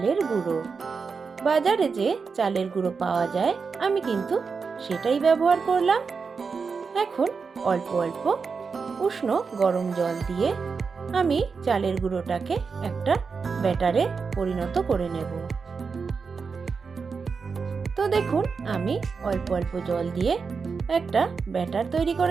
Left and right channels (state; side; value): quieter; left; 5.2 dB